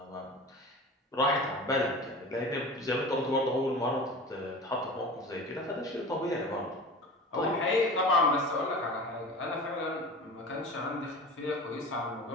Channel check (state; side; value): normal; both; correlation 0.35